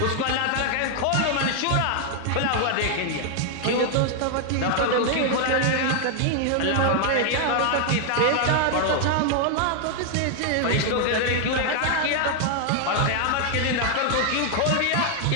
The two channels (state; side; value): different; both; correlation 0.00